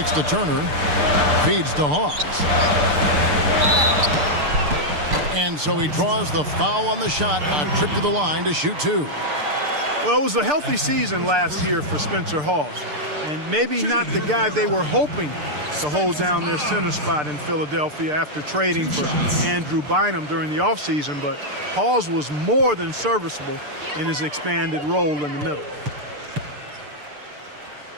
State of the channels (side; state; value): left; late; 6.7 ms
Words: to Turner. Feeds to Hawes. And so he draws the foul on the shot. A trip to the line to shoot 2. Well, it was a healthy season last year for Spencer Hawes, and maybe not the guy they were hoping to hold down their center spot in Philadelphia after trading for Andrew Bynum during the offseason, but Hawes was more than serviceable in his expanded role in the middle.